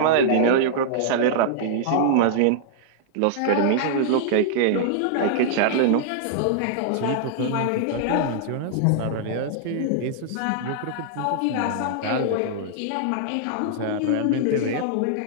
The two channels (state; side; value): different; both; correlation -0.01